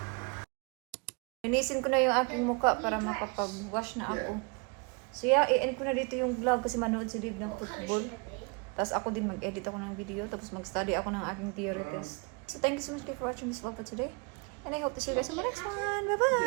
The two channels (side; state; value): left; quieter; 32.1 dB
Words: Linisin ko na yung aking muka para makapag-wash na ako. So yeah, i-end ko na dito yung vlog kasi manood si Dave ng football. Tapos ako din mag-edit ako ng video. Tapos mag-study ako ng aking theory test. So thank you so much for watching this vlog for today. And I hope to see you guys in the next one.